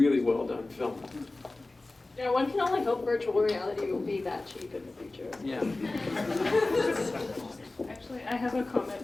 well done film. Yeah, one can only hope virtual reality will be that cheap in the future. Yeah. Actually, I have a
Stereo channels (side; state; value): right; quieter; 3.1 dB